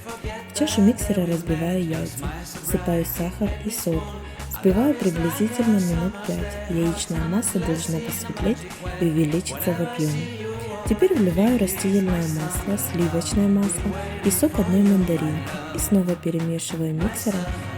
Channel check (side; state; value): both; identical; correlation 1.00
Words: В чашу миксера разбиваю яйца, всыпаю сахар и соль. Взбиваю приблизительно минут 5. Яичная масса должна посветлеть и увеличиться в объеме. Теперь вливаю растительное масло, сливочное масло и сок одной мандаринки и снова перемешиваю миксером